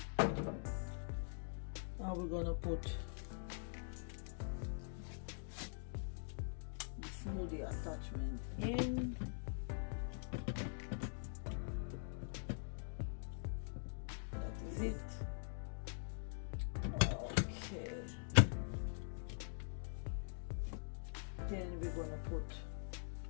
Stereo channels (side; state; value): right; silent; digital silence